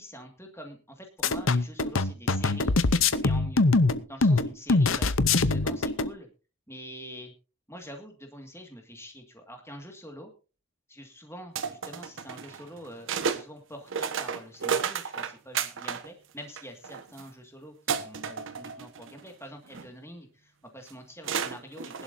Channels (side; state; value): both; normal; correlation 0.42